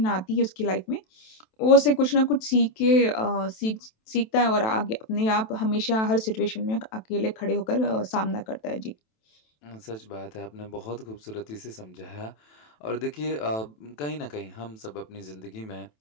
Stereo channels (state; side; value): late; right; 27 ms